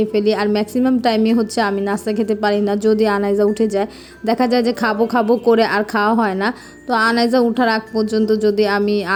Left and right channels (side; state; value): both; identical; correlation 1.00